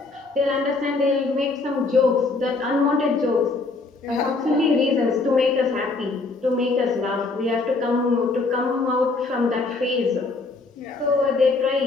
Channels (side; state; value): right; quieter; 3.7 dB